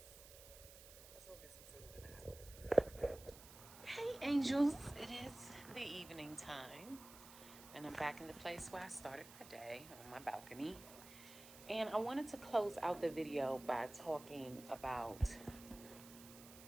Let's go get some food in the house. Hey angels, it is the evening time, and I'm back in the place where I started my day, on my balcony. And I wanted to close out the video by talking about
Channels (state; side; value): noise; right; hiss, 17 dB below the sound